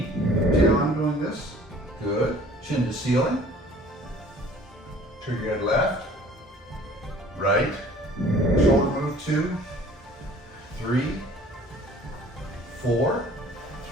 See how I'm doing this? Good. Chin to ceiling. Trigger head left, right. Shoulder move 2, 3, 4,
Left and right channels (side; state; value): both; normal; correlation 0.51